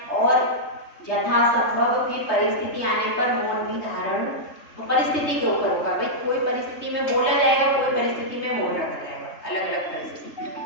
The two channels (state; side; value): late; right; 3.2 ms